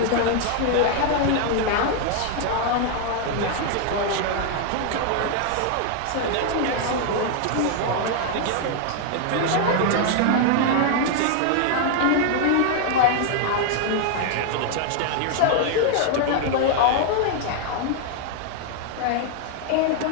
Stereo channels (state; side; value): different; both; correlation 0.00